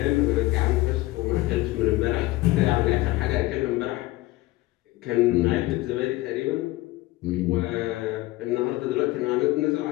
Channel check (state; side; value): quieter; right; 18.8 dB